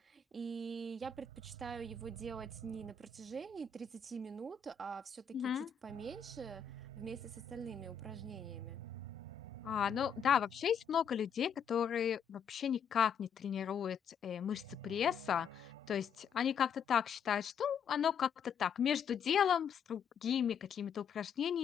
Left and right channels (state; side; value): quieter; right; 6.8 dB